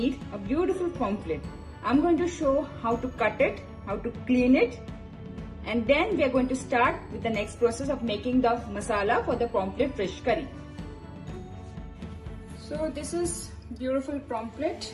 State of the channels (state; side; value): identical; both; correlation 1.00